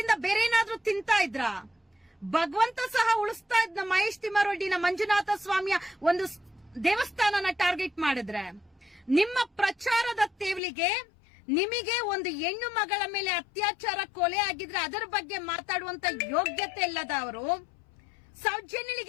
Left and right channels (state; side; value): drops out; right; at 10.6 s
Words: ಬೇರೆ ಏನಾದ್ರೂ ತಿಂತಾ ಇದ್ರ? ಭಗವಂತ ಸಹ ಉಳಿಸ್ತಾ ಇದ್ನ ಮಹೇಶ್ ತಿಮ್ಮಾರೆಡ್ಡಿನ ಮಂಜುನಾಥ ಸ್ವಾಮಿಯ ಒಂದು ದೇವಸ್ಥಾನನ ಟಾರ್ಗೆಟ್ ಮಾಡಿದ್ರೆ, ನಿಮ್ಮ ಪ್ರಚಾರದ ತೇವಲಿಗೆ ನಿಮಗೆ ಒಂದು ಹೆಣ್ಣು ಮಗಳ ಮೇಲೆ ಅತ್ಯಾಚಾರ ಕೊಲೆ ಆಗಿದ್ರೆ ಅದರ ಬಗ್ಗೆ ಮಾತಾಡುವಂತ ಯೋಗ್ಯತೆ ಇಲ್ಲದ ಅವರು